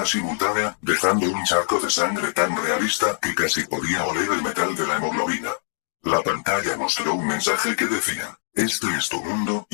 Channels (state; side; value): silent; right; 63 dB below the other